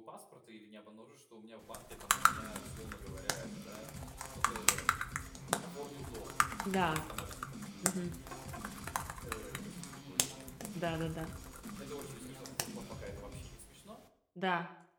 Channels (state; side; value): identical; both; correlation 1.00